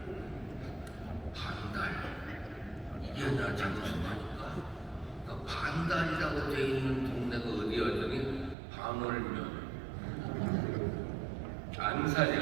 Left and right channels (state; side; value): drops out; left; at 8.6 s